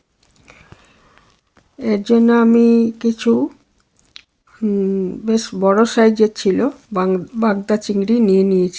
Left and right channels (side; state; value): both; identical; correlation 1.00